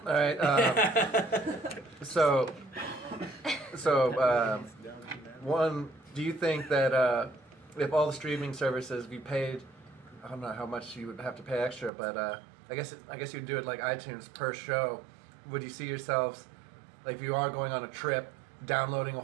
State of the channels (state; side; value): drops out; left; at 11.9 s